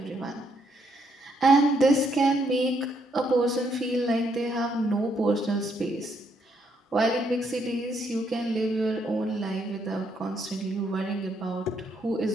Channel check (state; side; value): normal; both; correlation 0.74